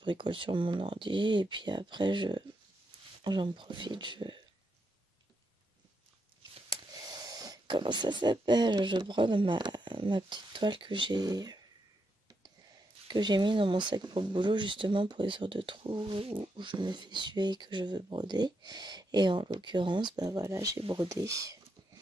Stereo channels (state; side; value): normal; both; correlation 0.82